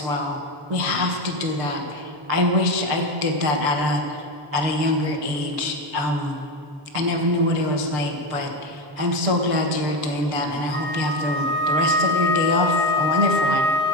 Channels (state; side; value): late; left; 6.8 ms